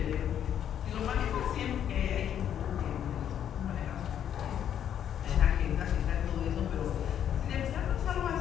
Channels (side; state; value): right; quieter; 9.6 dB